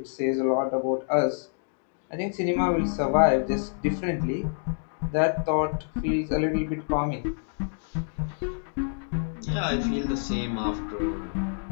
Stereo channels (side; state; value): right; silent; digital silence